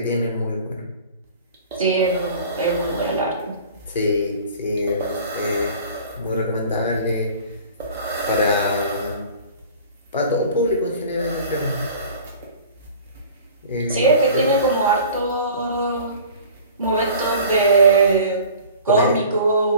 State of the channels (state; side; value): inverted; both; correlation -0.44